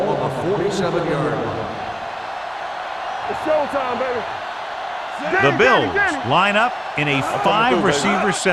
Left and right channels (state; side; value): identical; both; correlation 1.00